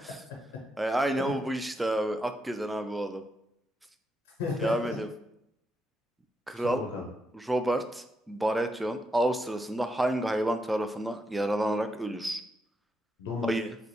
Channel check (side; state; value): both; normal; correlation 0.82